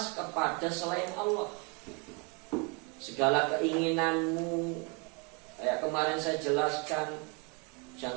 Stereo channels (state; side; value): quieter; left; 30.9 dB